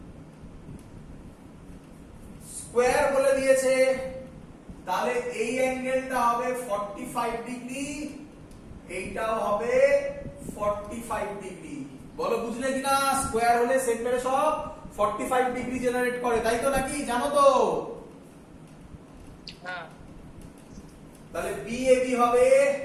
স্কোয়ার বলে দিয়েছে, তাহলে এই অ্যাঙ্গেলটা হবে 45 ডিগ্রি, এইটাও হবে 45 ডিগ্রি। বলো বুঝলে কিনা? স্কোয়ার হলে সেন্টারে সব 45 ডিগ্রি জেনারেট করে, তাই তো নাকি? জানো তো? হ্যাঁ তাহলে BAB হবে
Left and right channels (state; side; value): identical; both; correlation 1.00